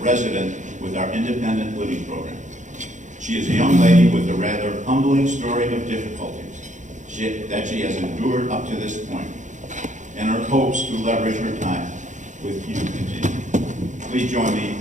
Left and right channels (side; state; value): left; late; 0.36 ms